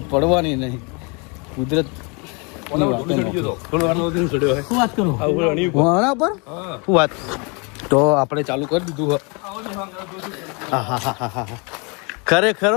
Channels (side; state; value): right; quieter; 32.0 dB